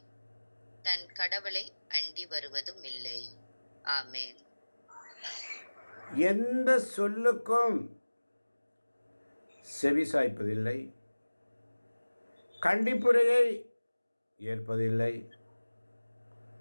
தன் கடவுளை அண்டி வருவதும் இல்லை. ஆமென். எந்த சொல்லுக்கும் செவிசாய்ப்பதில்லை, கண்டிப்புரையை ஏற்பதில்லை,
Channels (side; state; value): both; inverted; correlation -1.00